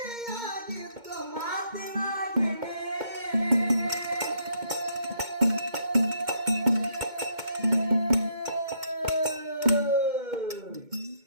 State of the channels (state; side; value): late; left; 2.2 ms